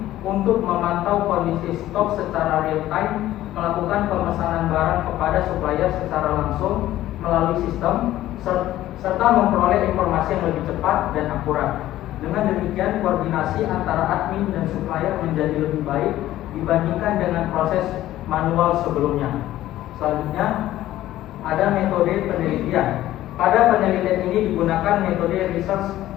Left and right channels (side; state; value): right; quieter; 14.3 dB